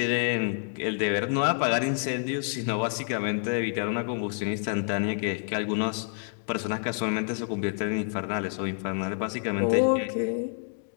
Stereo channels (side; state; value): right; silent; digital silence